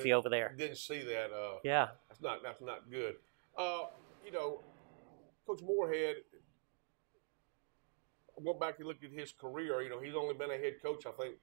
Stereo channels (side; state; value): left; silent; digital silence